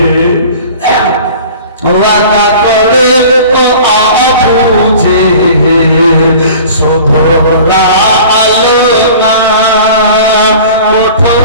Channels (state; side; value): inverted; both; correlation -0.43